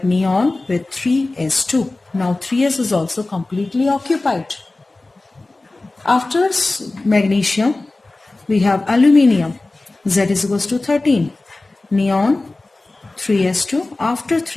neon with 3s2. Now 3s is also completely occupied. After magnesium we have aluminium. Z is equals to 13. Neon 3s2. After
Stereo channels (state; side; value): quieter; right; 3.1 dB